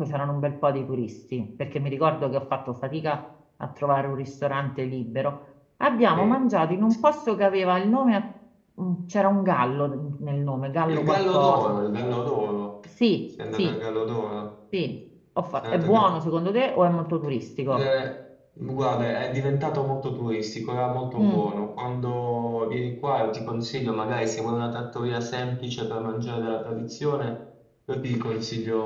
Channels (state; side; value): identical; both; correlation 1.00